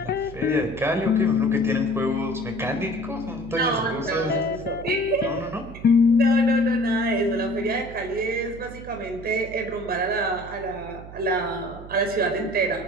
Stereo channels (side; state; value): right; noise; hum, 15 dB below the sound